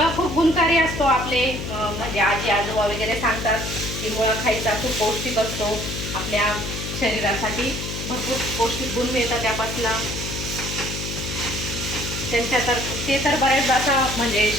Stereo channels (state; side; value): noise; left; hum, 6 dB below the sound